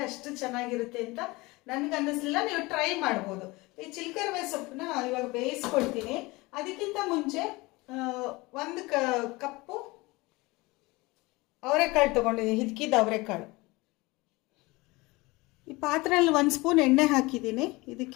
ಅಷ್ಟು ಚೆನ್ನಾಗಿರುತ್ತೆ ಅಂತ ನನ್ಗೆ ಅನ್ನಿಸ್ಲಿಲ್ಲ, ನೀವು ಟ್ರೈ ಮಾಡ್ಬೋದು. ಈ ಚಿಲ್ಕರ್ವೆ ಸೊಪ್ಪನ್ನ ಇವಾಗ ಬೇಯಿಸ್ಕೊಳ್ತೀನಿ. ಅದಕ್ಕಿಂತ ಮುಂಚೆ ಒಂದು ಕಪ್ಪು ಅವರೆಕಾಳು ತಗೊಂಡಿದ್ದೀನಿ, ಹಿದ್ಕಿದ ಅವರೆಕಾಳು. ಈ ಪಾತ್ರೆಯಲ್ಲಿ 1 ಸ್ಪೂನ್ ಎಣ್ಣೆ ಹಾಕಿದ್ದೀನಿ.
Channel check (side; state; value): right; quieter; 22.8 dB